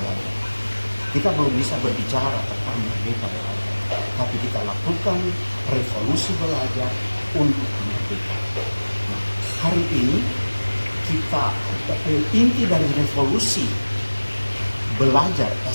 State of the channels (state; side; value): inverted; both; correlation -1.00